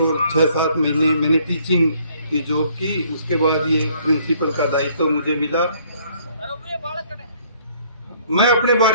6-7 महीने मैंने टीचिंग की जॉब की, उसके बाद ये प्रिंसिपल का दायित्व तो मुझे मिला। मैं अपने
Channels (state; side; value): inverted; both; correlation -0.62